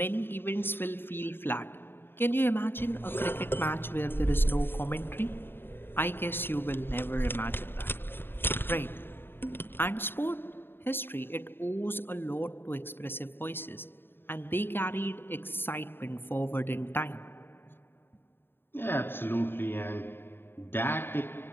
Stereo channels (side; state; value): right; late; 0.10 ms